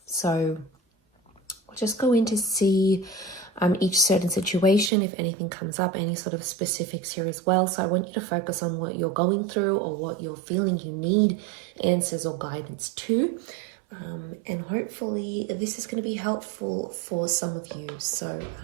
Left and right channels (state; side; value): drops out; left; at 4.9 s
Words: So we'll just go in to see each certain situation, if anything comes up, any sort of specifics here as well. So I want you to focus on what you're going through or what you're feeling you need answers or guidance to. And hopefully this is going to be helpful for some of you. So